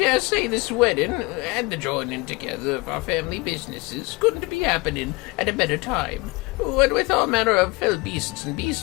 say this wedding and the joining together of our family businesses couldn't be happening at a better time. What with all manner of fell beasts and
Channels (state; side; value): quieter; right; 25.0 dB